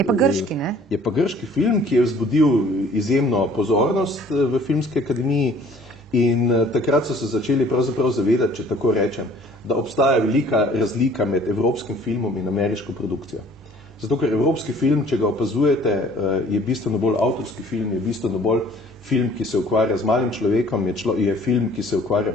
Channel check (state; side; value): normal; both; correlation 0.54